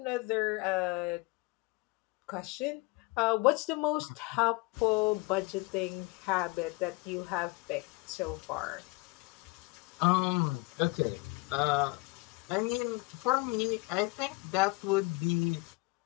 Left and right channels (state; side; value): quieter; right; 25.9 dB